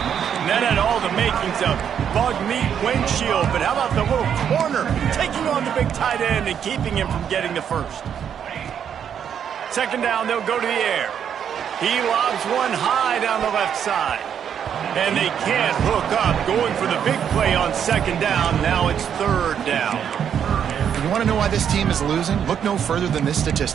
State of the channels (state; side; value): quieter; left; 8.4 dB